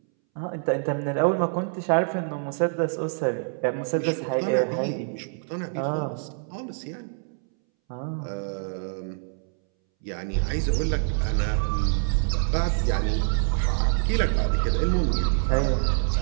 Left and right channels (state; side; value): silent; left; 61 dB below the other